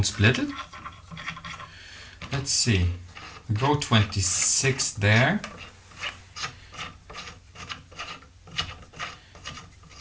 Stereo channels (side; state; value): both; identical; correlation 1.00